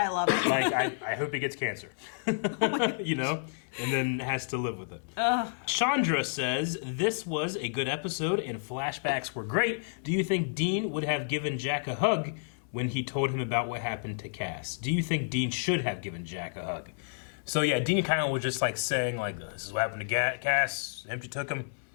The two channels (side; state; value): right; silent; 58 dB below the other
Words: love it. Like, I hope he gets cancer. And then has to live with it. Chandra says, this was a good episode and flashbacks were great. Do you think Dean would have given Jack a hug when he told him about what happened to Cass? Do you think Dean should have given Jack a hug? So yeah, Dean kind of was just like saying, like, this is what happened to Cass. Empty took him.